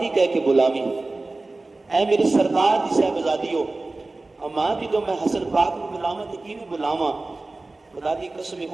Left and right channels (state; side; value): quieter; left; 3.3 dB